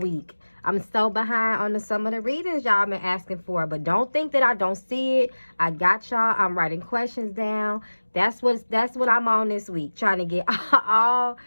I'm so behind on some of the readings y'all been asking for, but don't think that I don't see it. I got y'all. I'm writing questions down. That's what I'm on this week, trying to get all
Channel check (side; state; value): both; inverted; correlation -1.00